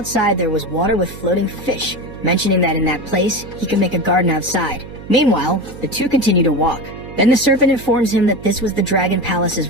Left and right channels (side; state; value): right; noise; hum, 14 dB below the sound